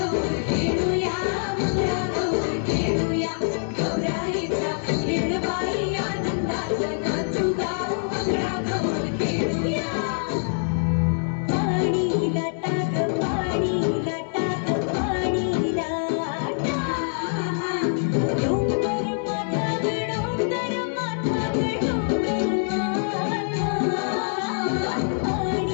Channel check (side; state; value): right; silent; digital silence